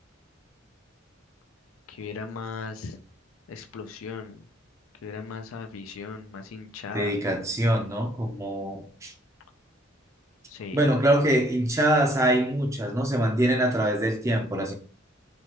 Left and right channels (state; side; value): normal; both; correlation 0.64